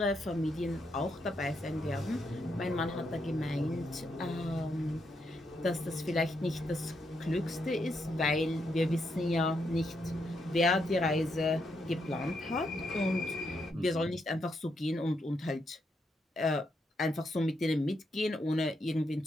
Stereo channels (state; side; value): normal; both; correlation 0.79